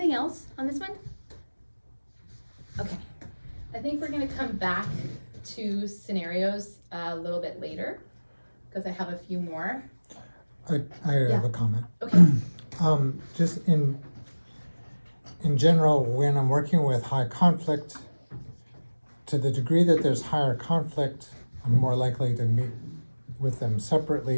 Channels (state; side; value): inverted; both; correlation -1.00